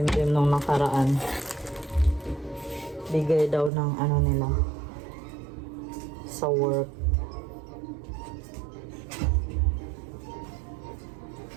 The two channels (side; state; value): left; drops out; at 3.7 s